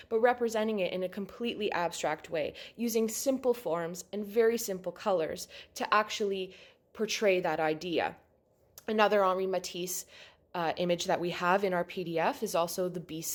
but representing it in a completely abstract way, using simple forms and very simple colors to actually portray that idea. Another Henri Matisse image that we have in our PDF is also the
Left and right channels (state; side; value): identical; both; correlation 1.00